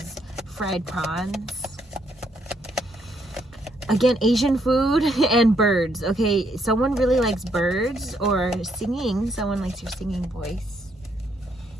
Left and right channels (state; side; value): normal; both; correlation 0.73